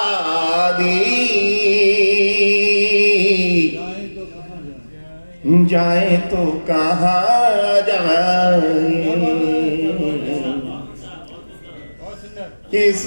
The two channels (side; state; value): both; inverted; correlation -1.00